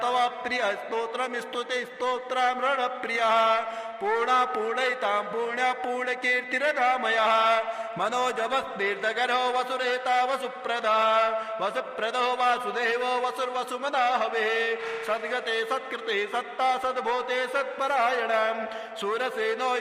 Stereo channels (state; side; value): identical; both; correlation 1.00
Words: प्रियः स्तोत्रम् स्तुते स्तोत्रमृण प्रियः पूर्णा पूर्णयितां पुण्य पूर्णकीर्तिरधामयः मनोजवस्तीर्थकरो वसुरेता वसुप्रदा वसुप्रदो वासुदेवो वसुर्वसुमना हवे सद्गते सत्कृते सत्ता सद्भूते सत्परायणम् सूरसेनो